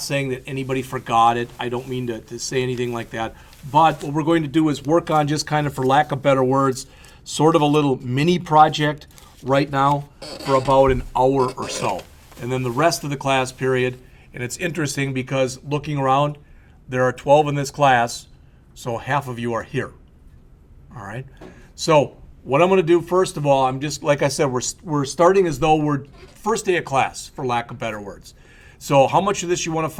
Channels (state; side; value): identical; both; correlation 1.00